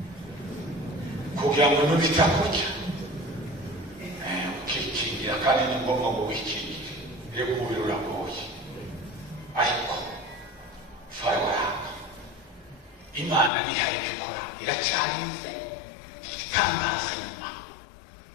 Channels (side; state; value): right; drops out; at 13.5 s